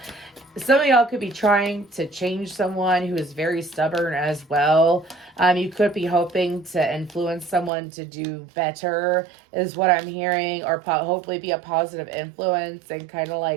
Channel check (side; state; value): left; drops out; at 7.7 s